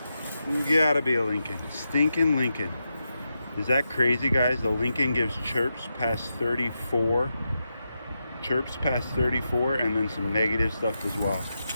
Gotta be a Lincoln. Stinking Lincoln. Is that crazy, guys? The Lincoln gives chirps past 34. Chirps past 34, and then some negative stuff as well.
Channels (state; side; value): inverted; both; correlation -0.87